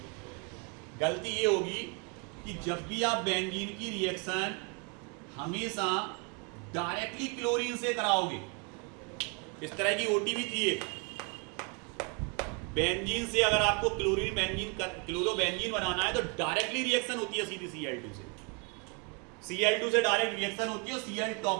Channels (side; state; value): left; quieter; 33.6 dB